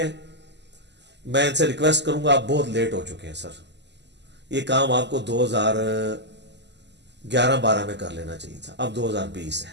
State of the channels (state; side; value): late; left; 0.50 ms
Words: میں ان سے ریکویسٹ کروں گا, آپ بہت لیٹ ہو چکے ہیں سر, یہ کام آپ کو 2011-12 میں کر لینا چاہیے تھا, اب 2020 ہے.